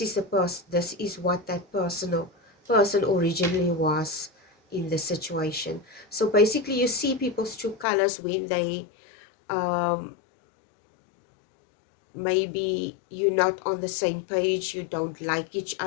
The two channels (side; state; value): right; drops out; at 7.9 s